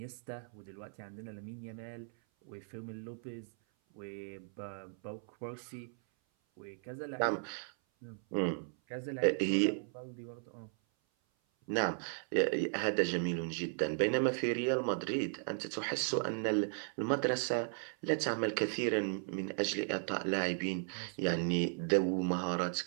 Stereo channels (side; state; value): left; silent; 54 dB below the other